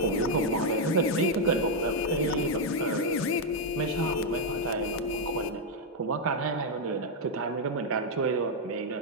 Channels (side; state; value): both; normal; correlation 0.00